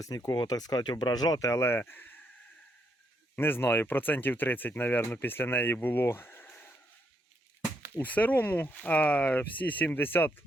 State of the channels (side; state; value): both; normal; correlation 0.77